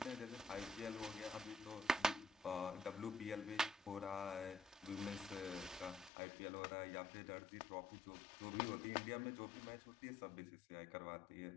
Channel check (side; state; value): right; drops out; at 6.1 s